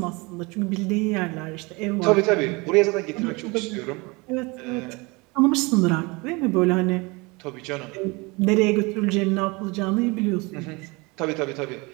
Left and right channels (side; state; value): left; quieter; 26.1 dB